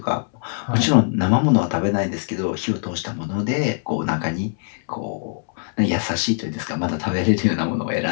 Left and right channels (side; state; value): right; silent; 64 dB below the other